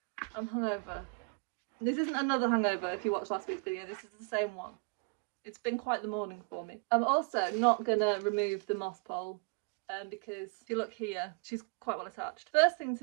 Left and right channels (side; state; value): left; quieter; 34.9 dB